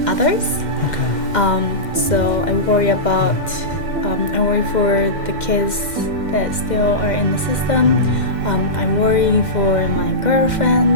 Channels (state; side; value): late; right; 2.1 ms